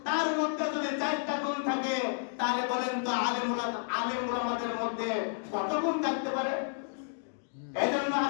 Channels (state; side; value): silent; right; digital silence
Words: তার মধ্যে যদি 4টা গুণ থাকে, তাহলে বলেন তো আলেম উলামাদের মধ্যে কত গুণ থাকতে পারে? এই জন্য